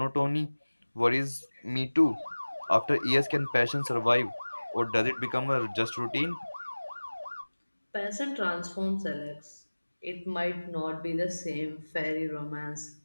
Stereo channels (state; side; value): inverted; both; correlation -1.00